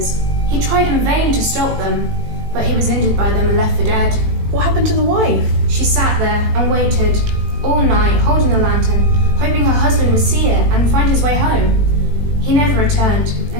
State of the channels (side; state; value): left; late; 18 ms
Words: He tried in vain to stop them, but he was injured by them and left for dead. What happened to the wife? She sat there and waited all night, holding the lantern, hoping her husband would see it and find his way home. He never returned,